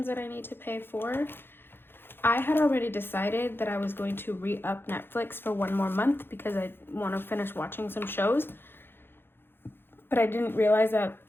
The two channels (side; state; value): right; late; 0.10 ms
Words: that I need to pay for. I had already decided that I was going to re-up Netflix for one more month because I want to finish watching some shows. But I didn't realize that